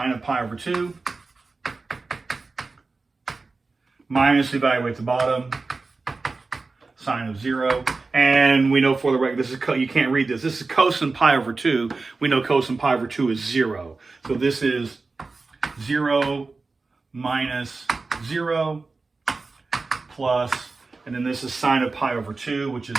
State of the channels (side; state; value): left; quieter; 3.8 dB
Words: of pi over 2 minus, evaluate the bottom, sine of 0. And we know for the record, this is you can't read this. This is cosine pi over 2. We know cosine pi over 2 is 0. So this is 0 minus 0 plus, and then this is sine of pi over 2, which is